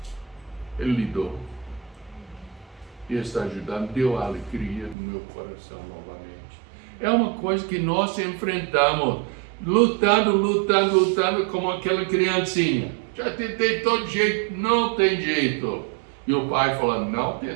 Ele lidou. E está ajudando, deu alegria no meu coração novamente. É uma coisa que nós enfrentamos, lutando como aquela criancinha. Já tentei todo jeito, não tem jeito. E o pai falando: não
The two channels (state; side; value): drops out; left; at 5.0 s